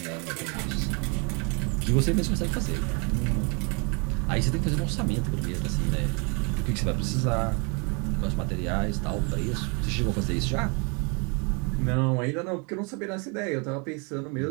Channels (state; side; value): quieter; left; 33.2 dB